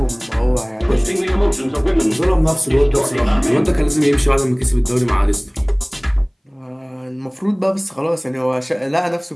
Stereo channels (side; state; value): both; identical; correlation 1.00